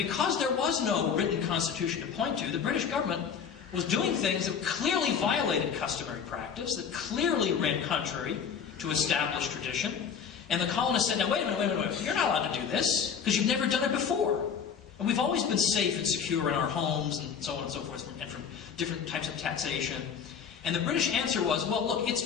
there was no written Constitution to point to, the British government was doing things that clearly violated customary practice, that clearly ran contrary to established tradition. And the colonists said, now wait a minute, you're not allowed to do this, because you've never done it before. And we've always been safe and secure in our homes, and so on and so forth, and from different types of taxation. And the British answer was, well, look,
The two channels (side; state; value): right; quieter; 7.0 dB